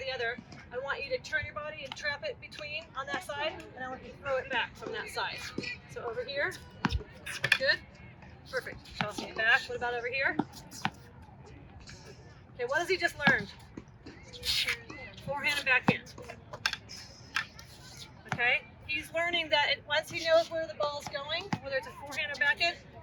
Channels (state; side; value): identical; both; correlation 1.00